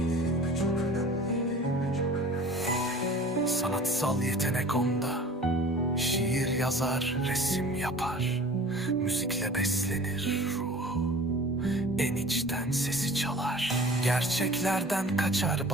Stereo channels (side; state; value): both; normal; correlation 0.43